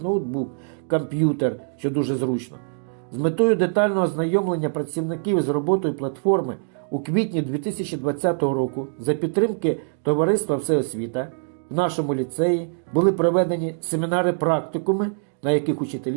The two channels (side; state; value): left; silent; digital silence